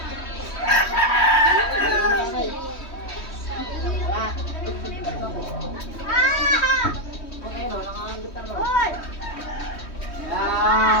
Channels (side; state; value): right; late; 3.1 ms